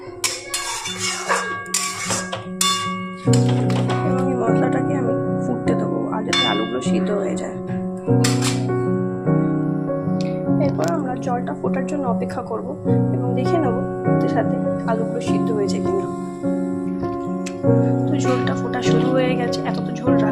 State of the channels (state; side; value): identical; both; correlation 1.00